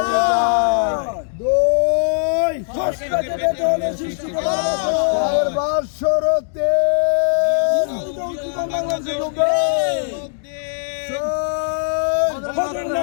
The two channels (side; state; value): right; silent; digital silence